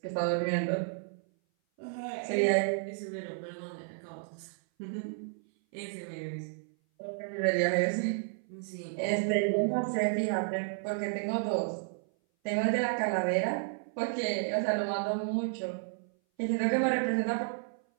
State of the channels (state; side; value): silent; left; 56 dB below the other